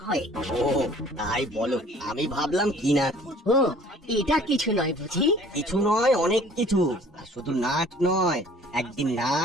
হয়। ও তাই বলো, আমি ভাবলাম কি না কি। ও, এটা কিছু নয় বুঝি? কিছু নয়, অনেক কিছু। আর শুধু নাট নয়, একদিন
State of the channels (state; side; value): normal; both; correlation 0.52